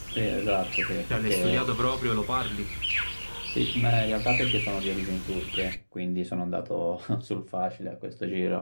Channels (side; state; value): both; inverted; correlation -1.00